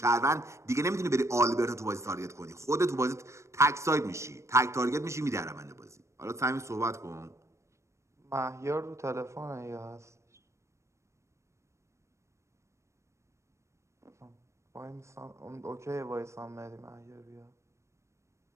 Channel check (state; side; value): late; left; 0.14 ms